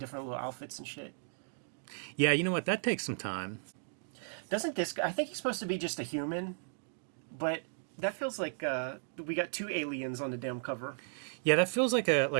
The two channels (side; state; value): left; silent; digital silence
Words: little outfits and shit. Yeah, you know what? That takes some time. Doesn't this guy? I think he's supposed to be just a human, but that feels like we got two aliens on the damn cover. Yeah, that feels like